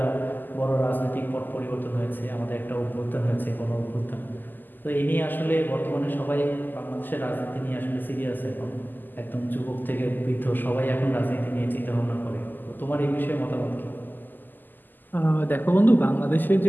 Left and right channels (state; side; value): late; right; 0.088 ms